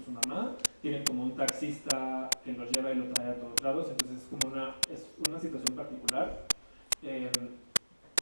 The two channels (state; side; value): inverted; both; correlation -1.00